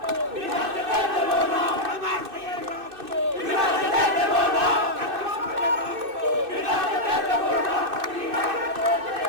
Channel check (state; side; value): late; left; 2.6 ms